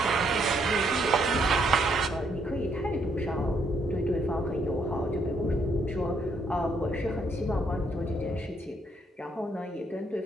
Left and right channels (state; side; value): normal; both; correlation 0.72